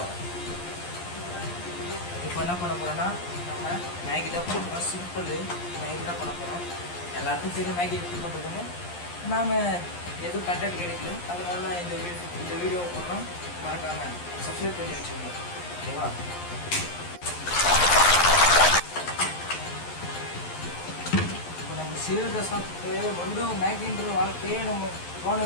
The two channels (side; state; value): right; late; 11 ms